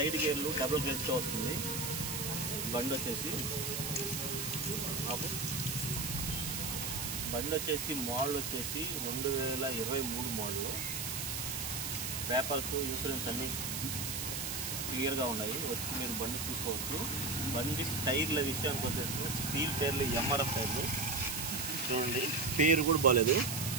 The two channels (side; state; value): right; noise; hiss, 3 dB below the sound